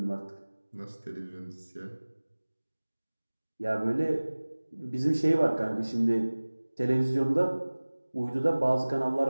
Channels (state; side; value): inverted; both; correlation -1.00